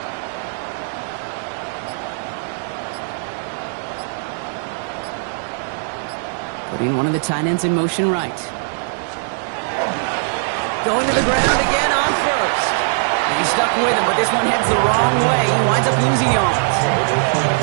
Putting one of the tight ends in motion right. Going to the ground again on first. And he's stuck with him, but this one heads the wrong way. He winds up losing yards.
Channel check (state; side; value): silent; left; 66 dB below the other